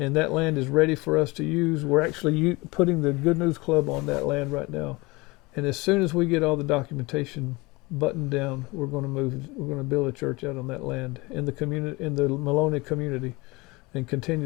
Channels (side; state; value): right; quieter; 23.8 dB